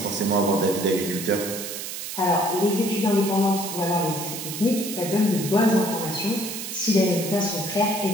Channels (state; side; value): noise; right; hiss, 7 dB below the sound